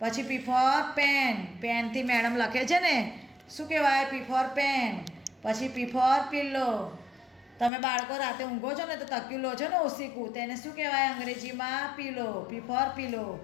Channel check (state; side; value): drops out; right; at 7.7 s